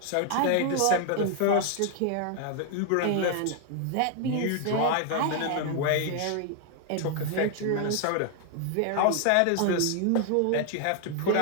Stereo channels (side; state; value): both; different; correlation 0.00